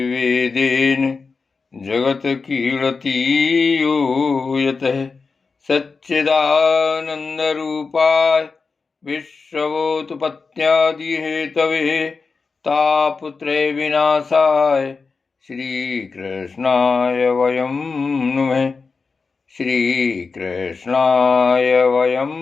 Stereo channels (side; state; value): right; quieter; 4.6 dB